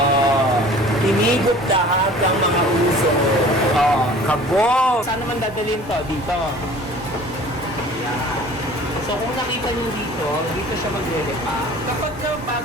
Tinigop lahat ng mga uso. Oh, kabog! Saan naman dadalhin to? Dito. Ayan. So kung nakita nyo dito, dito siya maglilipa. Kapag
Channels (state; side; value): noise; right; hum, 21 dB below the sound